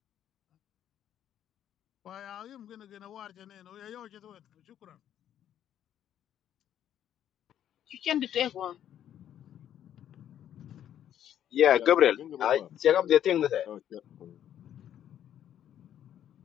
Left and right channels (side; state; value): right; quieter; 10.5 dB